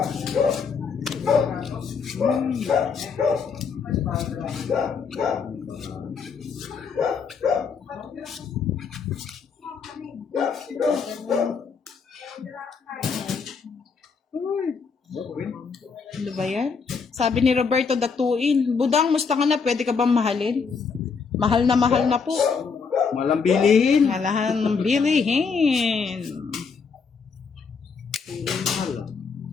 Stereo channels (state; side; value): quieter; right; 5.5 dB